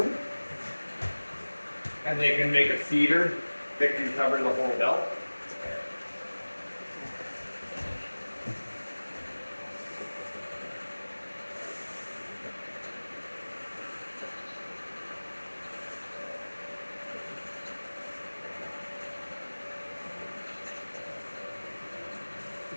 and they can make a feeder that can cover the whole belt.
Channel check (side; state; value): both; inverted; correlation -1.00